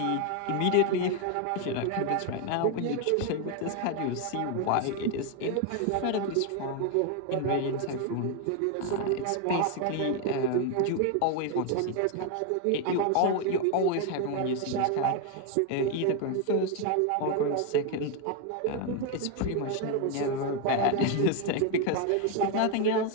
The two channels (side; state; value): both; different; correlation 0.01